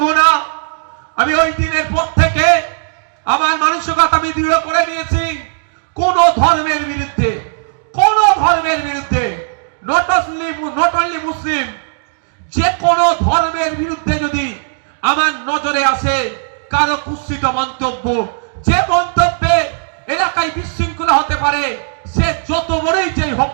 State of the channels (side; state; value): left; silent; digital silence